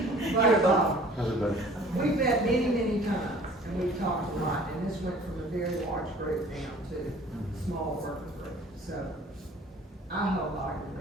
But, Everybody. we've met many, many times, and we've talked a lot, and this went from a very large group down to a small working group. So, I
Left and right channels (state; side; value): normal; both; correlation 0.50